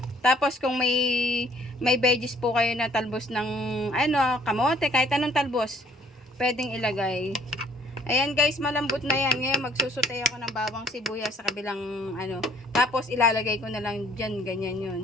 Tapos kung may veggies po kayo na talbos ng ano, kamote, kahit anong talbos, pwedeng ilagay. Ayan guys, malambot na yan. Ngayon magsusutay ako ng bawang sibuyas sa kabilang ano. Tapos ilalagay ko na lang dyan, ganyan yun.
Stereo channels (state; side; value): normal; both; correlation 0.61